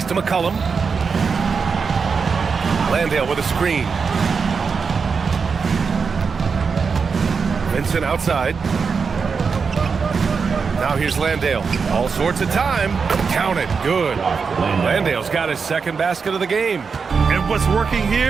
to McCollum. Landale with a screen. Vincent outside. Now here's Landale. All sorts of time. Count it. Good. Landale's got his second basket of the game. And what's working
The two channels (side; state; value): left; quieter; 5.4 dB